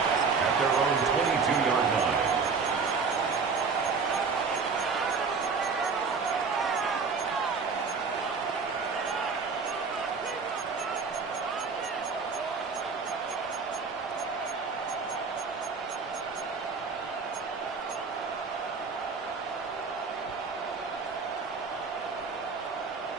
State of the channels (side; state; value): left; quieter; 5.0 dB